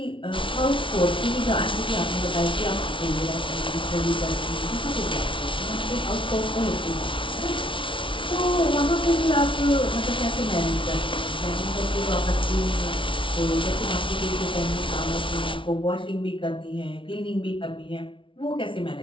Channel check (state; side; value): late; right; 0.25 ms